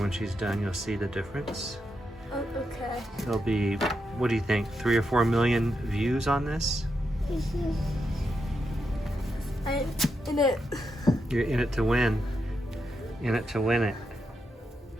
she's done, you'll see the difference. Oh, okay. There'll be, what do you think, 3 or 4 million views on this? I'm in it. You're in it to win. In it to win it.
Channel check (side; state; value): both; normal; correlation 0.84